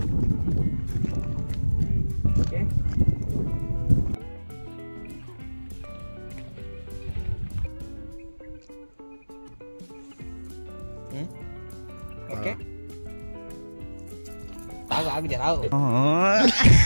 ఓకే ఓకే ఆగు జరావు.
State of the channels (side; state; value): both; inverted; correlation -1.00